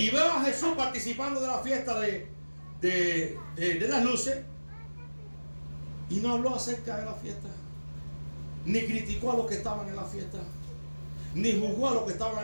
veo a Jesús participando de la fiesta de las luces, y no habló acerca de la fiesta, ni criticó a los que estaban en la fiesta, ni juzgó a los que estaban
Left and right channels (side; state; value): both; inverted; correlation -1.00